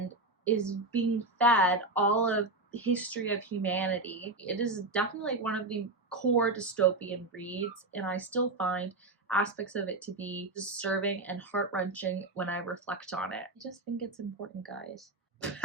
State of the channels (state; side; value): normal; both; correlation 0.20